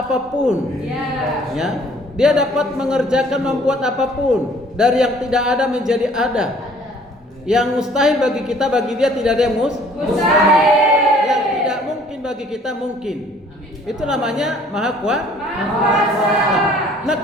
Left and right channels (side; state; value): both; normal; correlation 0.56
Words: Ya. Dia dapat mengerjakan, membuat apapun. Dari yang tidak ada menjadi ada. Yang mustahil bagi kita, bagi dia tidak ada yang mustahil. Yang tidak mungkin bagi kita mungkin. Itu namanya maha kuasa. Nah